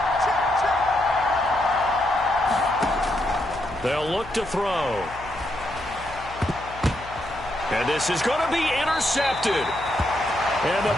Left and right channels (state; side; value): noise; left; hum, 17 dB below the sound